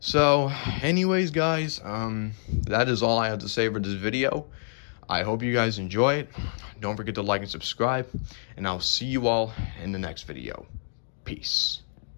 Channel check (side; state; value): right; silent; digital silence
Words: anyways, guys, that is all I have to say for this video. I hope you guys enjoy it. Don't forget to like and subscribe, and I'll see you all in the next video. Peace.